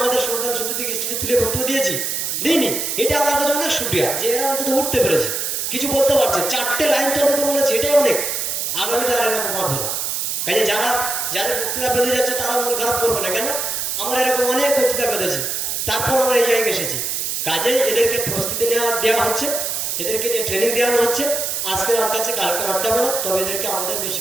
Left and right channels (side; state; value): right; noise; hiss, 1 dB below the sound